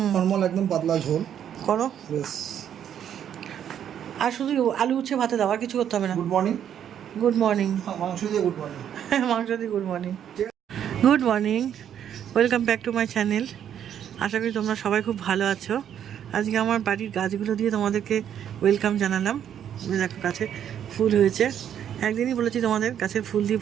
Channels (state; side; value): quieter; left; 9.5 dB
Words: নর্মাল একদম পাতলা ঝোল করো। বেশ। আর শুধু আলু উচ্ছে ভাতে দাও, আর কিছু করতে হবে না। Good morning. Good morning. মাংস দিয়ে গুড মর্নিং। মাংস দিয়ে good morning. Good morning, welcome back to my channel. আশা করি তোমরা সবাই খুব ভালো আছো। আজকে আমার বাড়ির গাছগুলো দিয়ে তোমাদেরকে ওয়েলকাম জানালাম। দেখো গাছে ফুল হয়েছে। একদিনই বলেছি তোমাদের গাছের ফুল দিয়ে